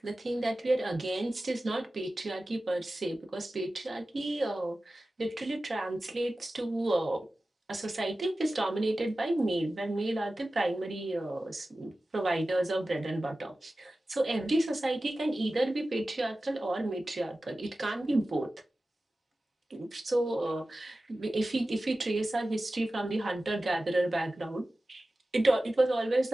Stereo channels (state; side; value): normal; both; correlation 0.95